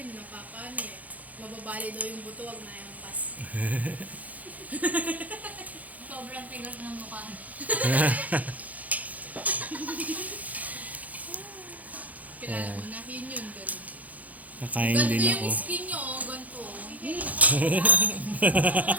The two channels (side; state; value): left; late; 0.076 ms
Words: napapano eh. Mababali daw yung buto, wag na yung pas. Sobrang tigas ng mukha. Kilala mo na, yun. Pero Nakain ganito din yung ako. skin nyo, oh, ganito.